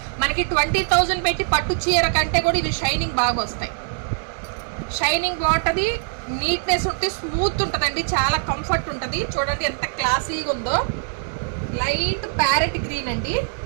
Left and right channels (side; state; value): left; silent; 59 dB below the other